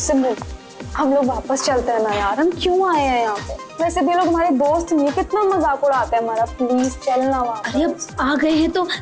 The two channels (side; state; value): both; identical; correlation 1.00